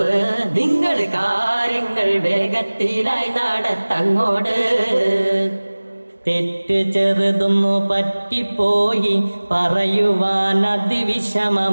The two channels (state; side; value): inverted; both; correlation -1.00